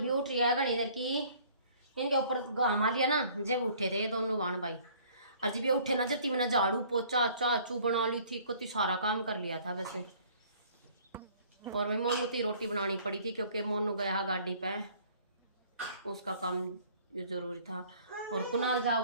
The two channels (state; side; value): inverted; both; correlation -0.55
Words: उठ रही है घनी देर की, इनके ऊपर घामा लिया ना जब उठे थे ये दोनों बाण भाई। और जब ये उठे ना जब मैंने झाड़ू पोचा चाचू बना ली थी, कति सारा काम कर लिया था वैसे। और मैं मोनू की रोटी बनानी पड़ी थी क्योंकि मोनू गया गाड़ी पे, उसका काम ये जरूरी था। और कुणाल